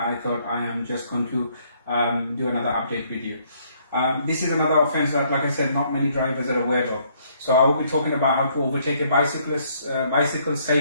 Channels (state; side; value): inverted; both; correlation -0.67